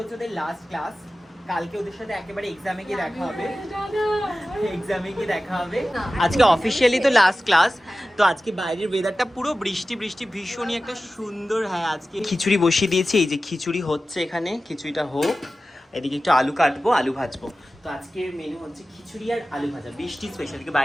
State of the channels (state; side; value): normal; both; correlation 0.95